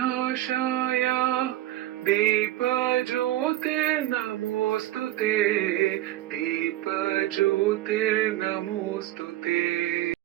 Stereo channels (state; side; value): quieter; left; 15.1 dB